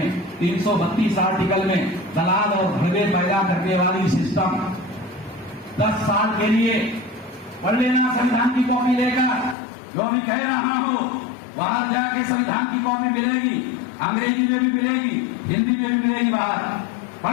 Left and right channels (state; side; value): drops out; right; at 9.6 s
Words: 332 आर्टिकल में दलाल और भगवे पैदा करने वाली सिस्टम 10 साल के लिए पढ़ लेना संविधान की कॉपी लेकर। जो भी कह रहा हूं, बाहर जाके संविधान की कॉपी मिलेगी, अंग्रेजी में भी मिलेगी, हिंदी में भी मिलेगी, बाहर